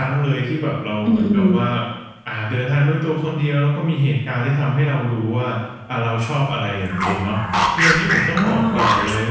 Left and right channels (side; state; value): both; identical; correlation 1.00